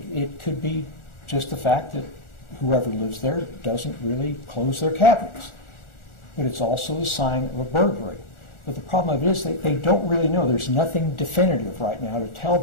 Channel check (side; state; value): right; late; 1.4 ms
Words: could be just the fact that whoever lives there doesn't really close their cabinets. But it's also a sign of a burglary. But the problem of it is they don't really know. There's nothing definitive right now to tell